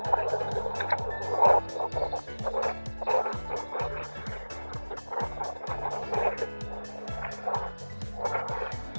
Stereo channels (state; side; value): inverted; both; correlation -1.00